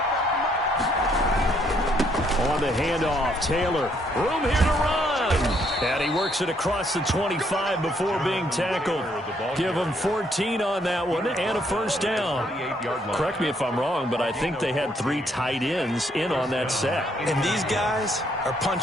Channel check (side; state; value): both; normal; correlation 0.70